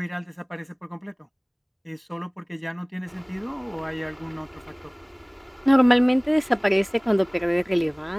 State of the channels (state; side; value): identical; both; correlation 1.00